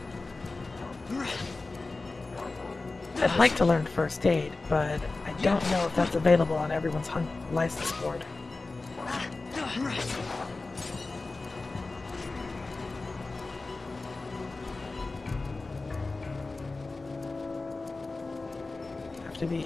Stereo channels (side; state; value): right; quieter; 3.5 dB